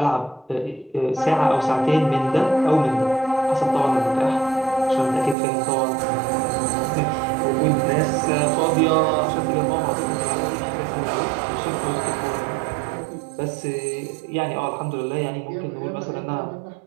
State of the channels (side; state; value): left; drops out; at 5.4 s